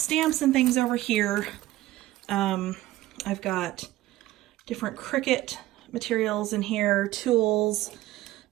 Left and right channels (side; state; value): left; quieter; 16.0 dB